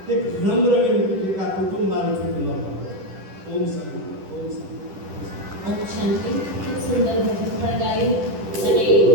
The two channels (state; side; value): late; left; 10 ms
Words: એક નમ્ર વિનંતી કે આ કુટુંબ મારું છૂટું ન પાડતો. ઓમ શાંતિ, ઓમ શાંતિ. ઓમ શાંતિ. ખૂબ સુંદર ભજન પણ ગાયું અને